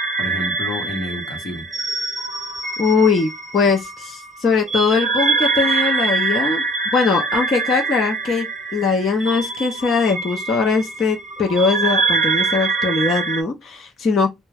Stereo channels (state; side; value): normal; both; correlation 0.50